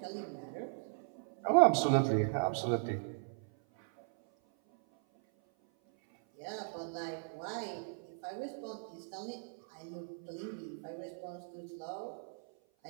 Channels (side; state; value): left; silent; 53 dB below the other